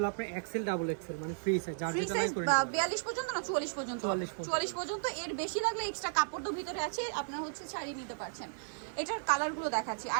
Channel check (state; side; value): silent; left; digital silence